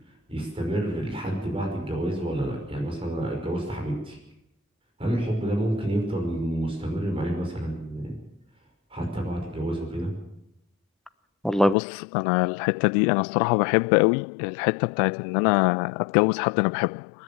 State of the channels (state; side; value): drops out; right; at 11.8 s